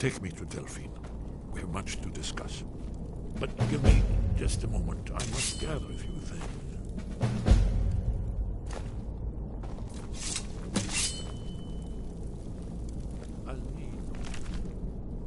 me to Delphine. We have much to discuss. But give me just a moment. I must gather a few things. I'll need...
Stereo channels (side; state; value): both; identical; correlation 1.00